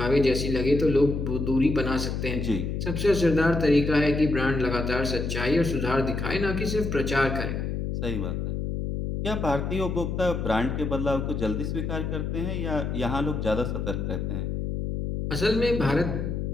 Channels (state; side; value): noise; left; hum, 2 dB below the sound